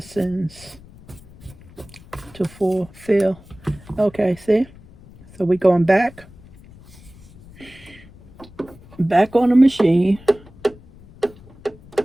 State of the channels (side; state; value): left; noise; rumble, 22 dB below the sound